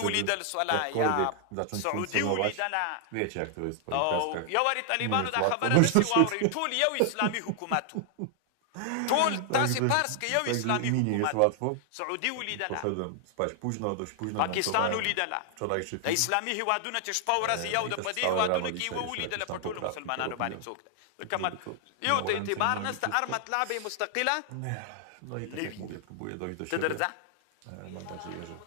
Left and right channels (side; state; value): both; different; correlation 0.00